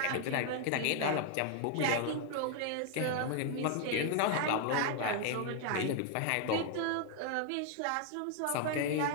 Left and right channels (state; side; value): different; both; correlation 0.00